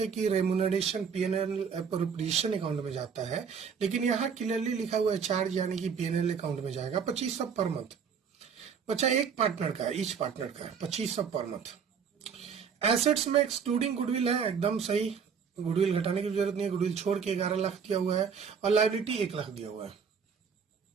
कि रेमुनरेशन पीएनएल अप्रोप्रिएशन अकाउंट में जाता है, लेकिन यहाँ क्लियरली लिखा हुआ है चार्ज, यानी कि पीएनएल अकाउंट में जाएगा। 2500 पर मंथ बच्चा, एक पार्टनर का, ईच पार्टनर का 2500 पर मंथ। एसेट्स में एक्सक्लूडिंग गुडविल है, एकदम सही। गुडविल घटाने की जरूरत नहीं है, गुडविल छोड़ के 11 लाख दिया हुआ है और लायबिलिटी 1 लाख दिया हुआ है।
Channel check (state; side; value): quieter; left; 6.6 dB